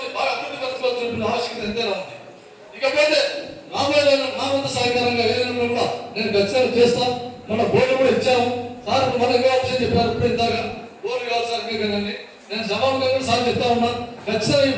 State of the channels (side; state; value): both; identical; correlation 1.00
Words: బాగా అభివృద్ధి పరచుకోవాల్సిన ఆవశ్యకత ఎంతైనా ఉంది. ఇకపోతే రాబోయే రోజుల్లో నా వంతు సహకారంగా ఏదైనా కూడా నేను ఖచ్చితంగా చేస్తాను. మన బోర్డు కూడా ఇచ్చాము సార్. మనకు ఆప్షన్ చెప్పారు ఇప్పుడు ఇందాక బోర్డు కావాలి సార్ కదండి. నేను సభాముఖంగా సార్ చెప్తా ఉన్నాను. ఖచ్చితంగా ఈ